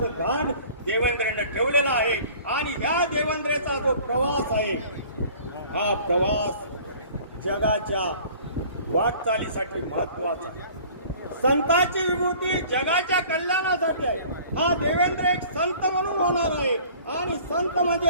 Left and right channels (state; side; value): inverted; both; correlation -0.49